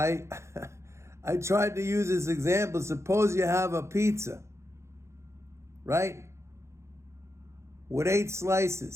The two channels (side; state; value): left; late; 0.13 ms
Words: tried to use this example. Suppose you have a pizza, right? With 8